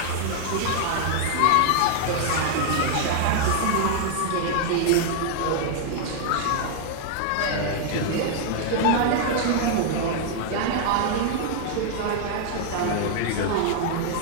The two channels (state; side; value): different; both; correlation 0.00